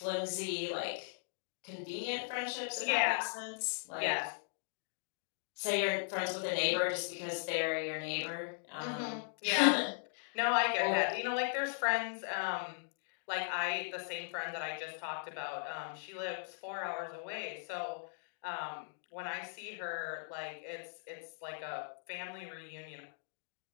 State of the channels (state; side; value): silent; right; digital silence